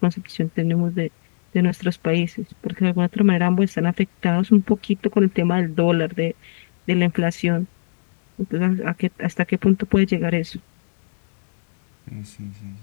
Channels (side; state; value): right; silent; 66 dB below the other